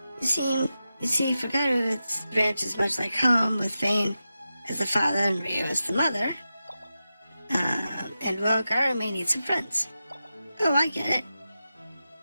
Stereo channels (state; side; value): inverted; both; correlation -0.91